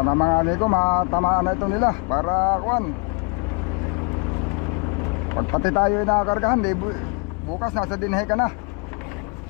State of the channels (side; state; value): right; quieter; 32.2 dB